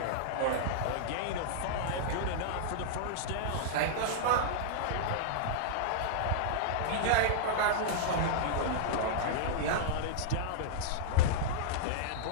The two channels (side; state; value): both; different; correlation -0.01